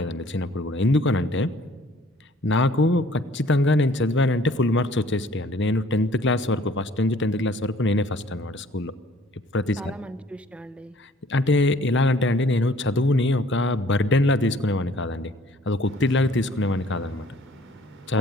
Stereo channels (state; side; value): normal; both; correlation 0.56